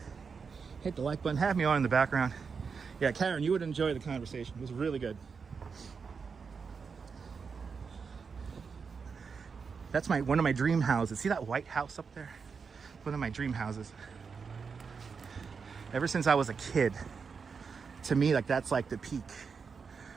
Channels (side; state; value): left; quieter; 5.6 dB